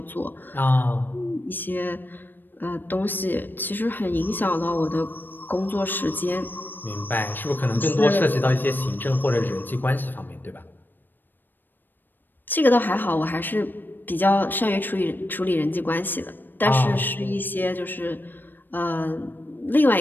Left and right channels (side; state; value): right; late; 0.093 ms